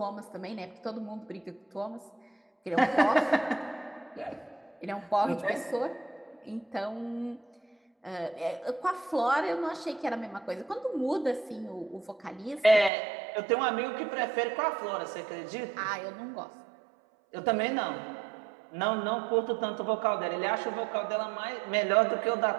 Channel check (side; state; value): left; drops out; at 12.9 s